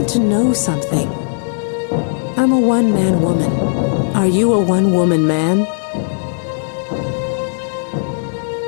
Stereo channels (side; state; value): right; silent; digital silence